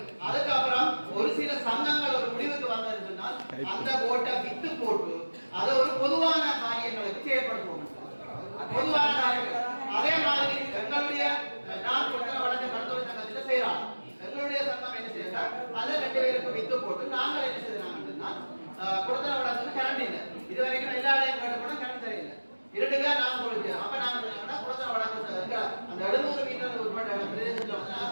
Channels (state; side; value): inverted; both; correlation -1.00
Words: அதுக்கப்புறம் ஒரு சில சங்கங்கள் ஒரு முடிவுக்கு வந்ததுனால் அந்த போட்டை வித்து போட்டு அதை ஒரு பொதுவான காரியங்களுக்கு செயல்படுத்துவோம் பொதுவான காரியங்கள் அதே மாதிரி எங்களுடைய நான் கொடுத்த வழக்கு மருத்துவ சங்கத்தில் செய்யறாங்க எங்களுடைய சங்கம் என்ன செய்யறா அதை 2 பேருக்கு வித்து போட்டு நாங்கள் என்ன செய்யறாங்கன்னா கொடுத்த வழக்கு கரண்ட் இல்லை இது வரைக்கும் எல்லா இடையும் கேட்டு கூட கரண்ட் தெரியல 2 பேர் நான் கொடுத்து அப்ப நாங்க கொடுத்த வழக்கு அந்த 700 மீட்டர் உட்பட்ட பிரதேசத்துல வந்து